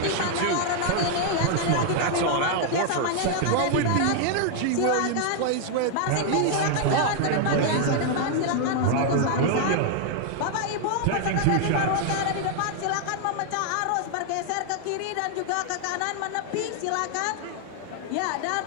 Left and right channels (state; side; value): different; both; correlation 0.00